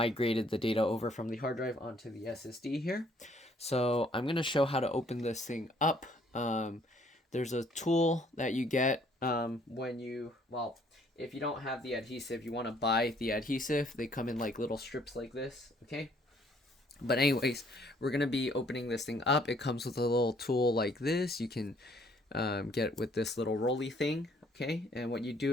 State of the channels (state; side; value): normal; both; correlation 0.63